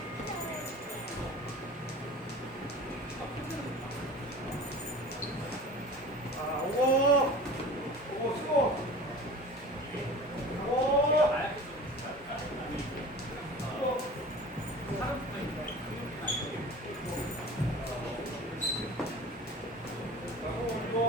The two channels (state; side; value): normal; both; correlation 0.39